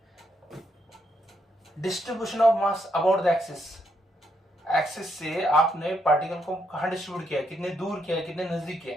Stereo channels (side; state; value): both; normal; correlation 0.77